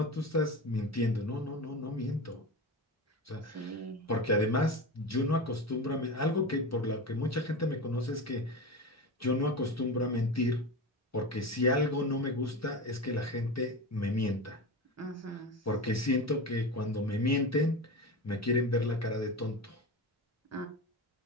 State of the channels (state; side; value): normal; both; correlation 0.25